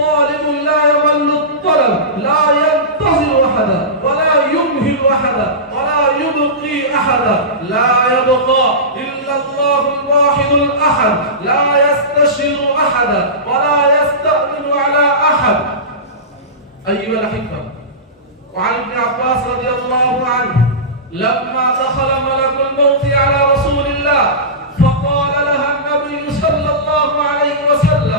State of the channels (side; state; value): both; normal; correlation -0.19